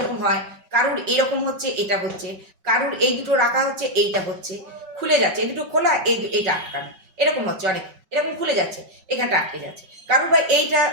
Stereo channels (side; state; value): left; late; 5.4 ms